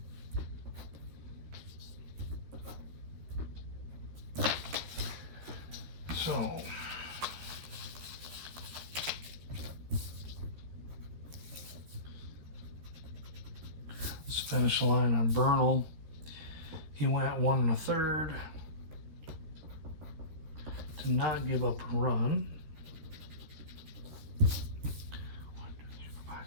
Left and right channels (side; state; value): left; late; 13 ms